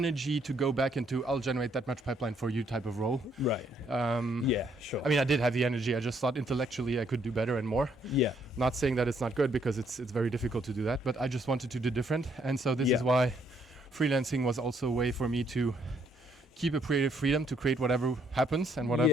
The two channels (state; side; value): normal; both; correlation 0.70